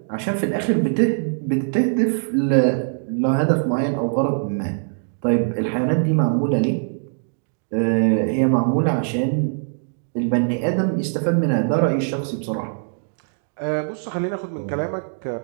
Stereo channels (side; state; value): left; silent; digital silence